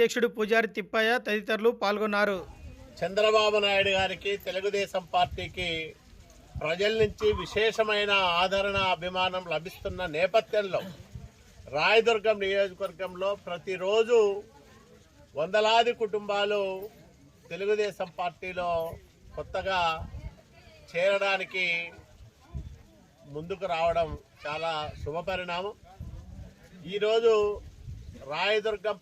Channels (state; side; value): identical; both; correlation 1.00